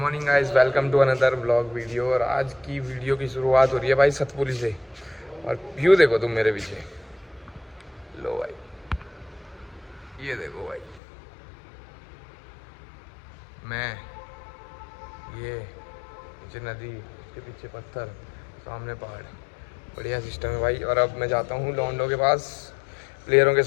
guys, welcome to another blog video. और आज की वीडियो की शुरुआत हो रही है भाई सतपुली से। और व्यू देखो तुम मेरे पीछे, लो भाई, ये देखो भाई, मैं ये नीचे नदी, उसके पीछे पत्थर, सामने पहाड़, बढ़िया सिस्टम है भाई। और अब मैं जाता हूँ लॉन्डो के पास प्लेयरों के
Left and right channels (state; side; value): drops out; right; at 11.0 s